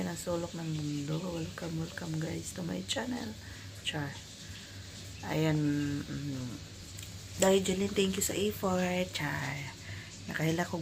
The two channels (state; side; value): identical; both; correlation 1.00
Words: ng sulok ng mundo, welcome guys to my channel. Char. Ayan, dahil Jeline, thank you sa effort. Char. Nakahila